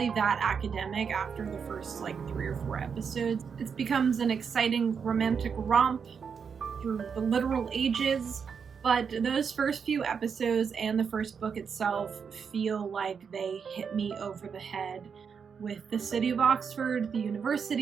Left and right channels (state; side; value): quieter; left; 6.4 dB